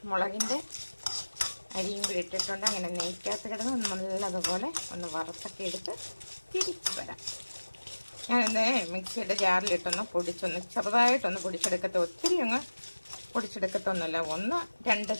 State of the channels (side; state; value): both; inverted; correlation -1.00